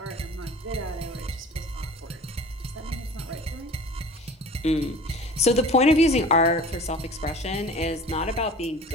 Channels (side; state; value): both; normal; correlation 0.42